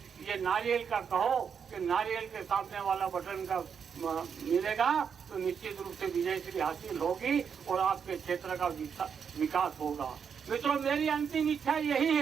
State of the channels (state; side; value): quieter; left; 6.9 dB